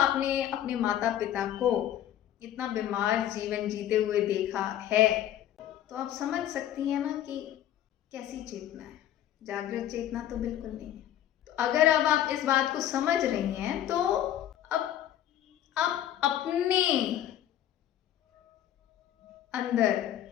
अपने माता पिता को इतना बीमार जीवन जीते हुए देखा है, तो आप समझ सकती हैं ना कि कैसी चेतना है। जागृत चेतना तो बिल्कुल नहीं है। तो अगर अब आप इस बात को समझ रही हैं तो अब आप अपने अंदर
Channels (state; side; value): quieter; right; 11.6 dB